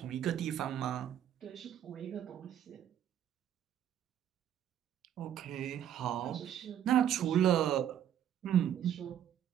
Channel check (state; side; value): quieter; left; 10.2 dB